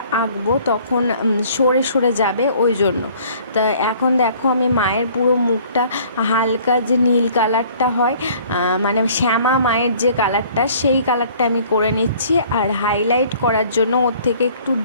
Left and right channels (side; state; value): both; inverted; correlation -0.54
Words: আঁকবো তখন সরে সরে যাবে, ওই জন্য। তা এখন দেখো আমি মায়ের পুরো মুখটা হালকা যে নীল কালারটা হয়, মানে শ্যামা মায়ের যে কালারটা, সেই কালারটা আমি করে নিচ্ছি। আর হাইলাইট করার জন্য ওর থেকে একটু